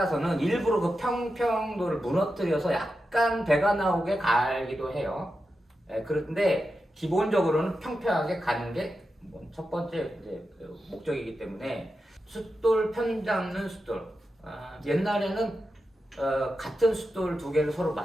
일부러 그 평평도를 무너뜨려서 약간 배가 나오게 갈기도 해요. 그런데 기본적으로는 평평하게 가는 게 첫 번째 이제 목적이기 때문에 숫돌 편 잡는 숫돌. 옛날에는 같은 숫돌 두 개를 서로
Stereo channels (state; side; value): normal; both; correlation 0.90